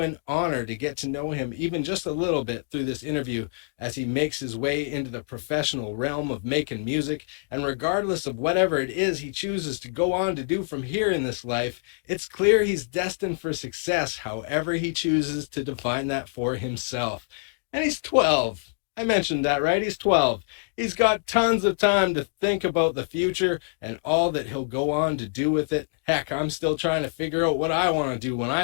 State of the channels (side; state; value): right; silent; digital silence